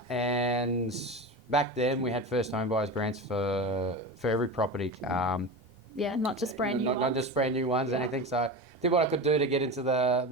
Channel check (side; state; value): both; normal; correlation 0.26